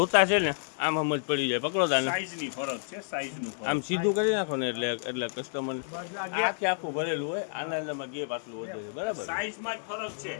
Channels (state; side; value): silent; right; digital silence